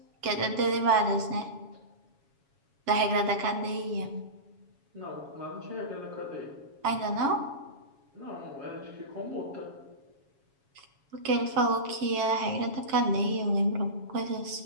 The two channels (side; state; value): left; late; 7.2 ms